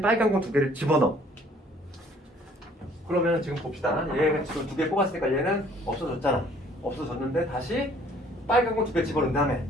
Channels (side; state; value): both; normal; correlation 0.58